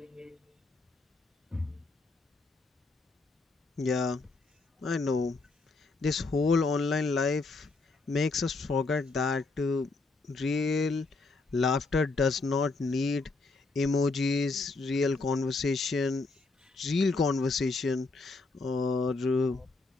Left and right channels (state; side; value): quieter; right; 3.7 dB